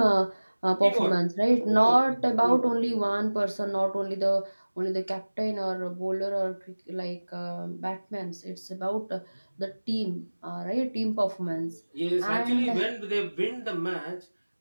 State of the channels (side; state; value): both; inverted; correlation -1.00